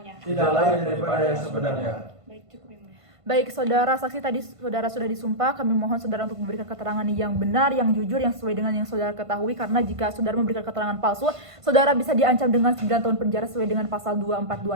tidak lain daripada yang sebenarnya. Baik, cukup yang mulia. Baik, saudara saksi tadi saudara sudah disumpah, kami mohon saudara untuk memberikan keterangan yang benar, yang jujur, yang sesuai dengan yang saudara ketahui, karena jika saudara memberikan keterangan palsu, saudara bisa diancam dengan 9 tahun penjara sesuai dengan pasal 242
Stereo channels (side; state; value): left; late; 1.5 ms